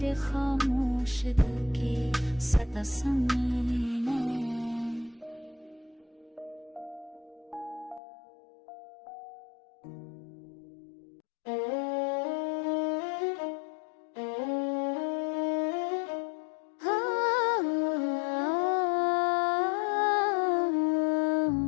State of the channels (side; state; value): right; drops out; at 8.0 s